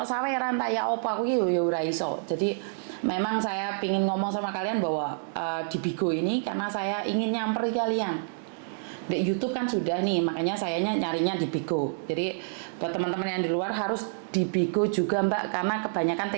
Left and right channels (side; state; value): left; silent; digital silence